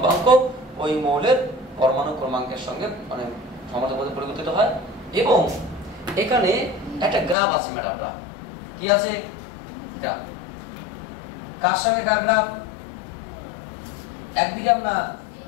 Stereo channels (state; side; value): drops out; right; at 7.4 s